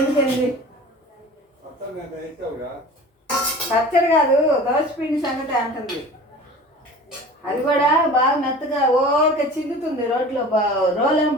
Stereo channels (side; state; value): both; normal; correlation 0.40